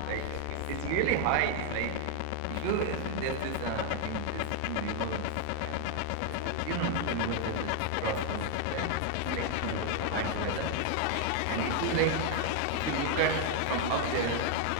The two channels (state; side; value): different; both; correlation 0.00